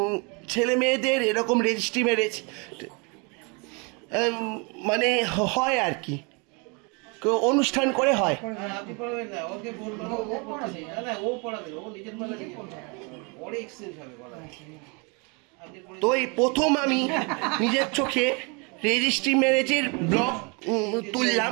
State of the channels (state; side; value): quieter; left; 31.7 dB